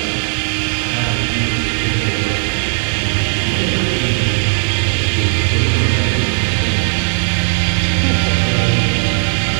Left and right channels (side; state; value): left; silent; digital silence